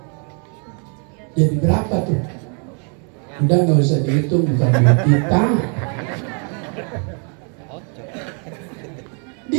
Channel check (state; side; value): quieter; left; 39.7 dB